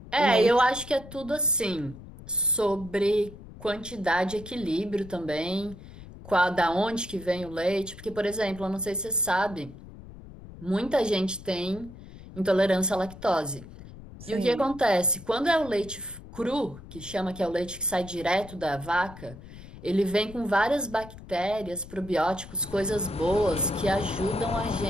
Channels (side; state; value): left; noise; rumble, 16 dB below the sound